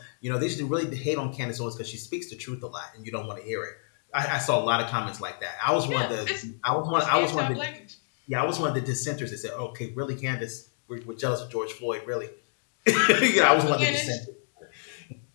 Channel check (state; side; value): silent; right; digital silence